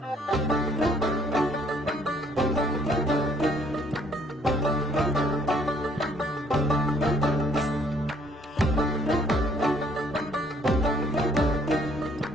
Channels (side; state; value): both; normal; correlation 0.63